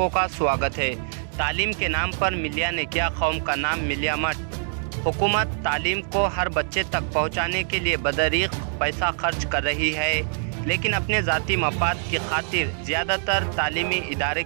का स्वागत है। तालीम के नाम पर मिलिया ने किया कौम का नाम मिलिया मत। हुकूमत तालीम को हर बच्चे तक पहुंचाने के लिए बदरीक पैसा खर्च कर रही है, लेकिन अपने ज़ाती मफाद की खातिर ज़्यादातर तालीमी इदारे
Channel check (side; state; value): left; silent; 62 dB below the other